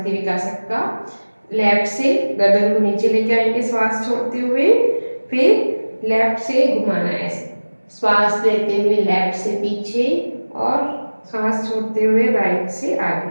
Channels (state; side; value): inverted; both; correlation -1.00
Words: विकासक का। लेफ्ट से गर्दन को नीचे लेके आएंगे श्वास छोड़ते हुए, फिर लेफ्ट से घुमाना है ऐसे, श्वास लेते हुए लेफ्ट से पीछे और सांस छोड़ते हुए राइट से